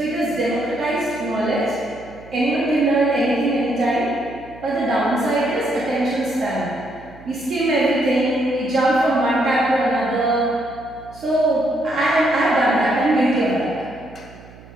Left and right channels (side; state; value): right; noise; hum, 21 dB below the sound